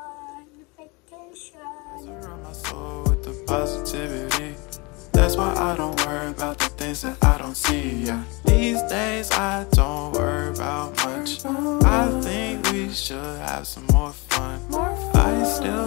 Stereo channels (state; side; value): quieter; right; 27.4 dB